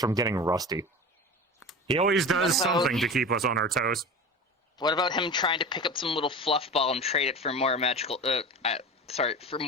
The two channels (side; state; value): both; normal; correlation 0.30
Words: getting rusty. He always does something to keep us on our toes. What about him trying to pick up some little fluff ball and trade it for more magical? For